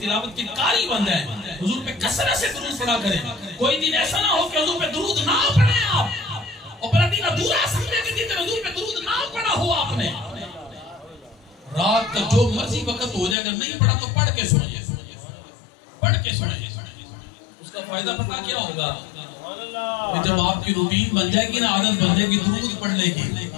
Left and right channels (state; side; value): drops out; right; at 13.4 s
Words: تلاوت کے قاری بن گئے, حضور پہ کثرت سے درود پڑھا کریں. کوئی دن ایسا نہ ہو کہ حضور پہ درود نہ پڑھیں آپ, اور پھر دن ادھورا سمجھے کہ دن حضور پہ درود نہ پڑھا ہو آپ نے. رات کا جو مرضی وقت ہو جائے, اگر نہیں پڑھا تو پڑھ کے سنیں, پڑھ کے سنیں. اس کا فائدہ پتہ کیا ہوگا؟ جب آپ کی روٹین بن جائے گی نا, عادت بن جائے گی درود پڑھنے کی,